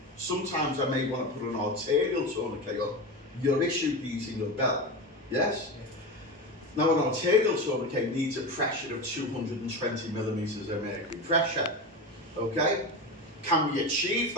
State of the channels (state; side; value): normal; both; correlation 0.22